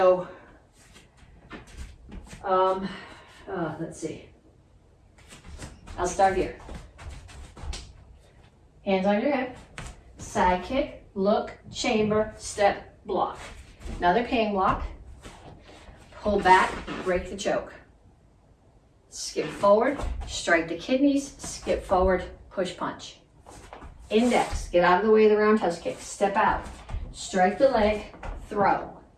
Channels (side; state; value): both; identical; correlation 1.00